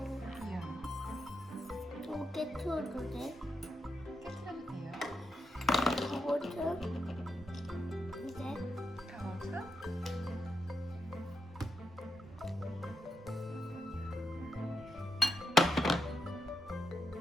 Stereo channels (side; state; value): both; normal; correlation 0.84